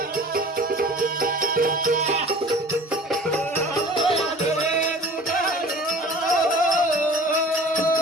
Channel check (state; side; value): normal; both; correlation 0.44